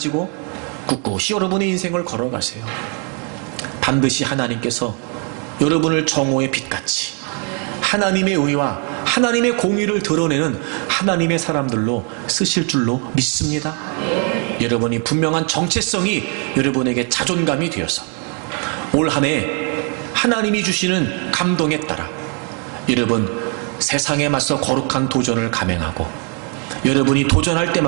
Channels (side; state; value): left; quieter; 37.7 dB